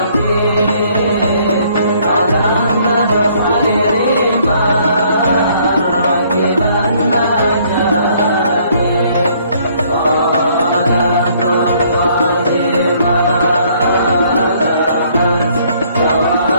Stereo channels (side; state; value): both; inverted; correlation -0.63